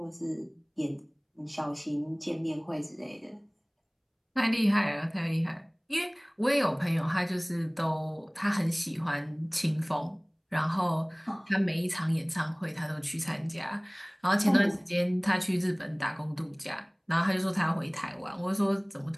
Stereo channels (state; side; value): identical; both; correlation 1.00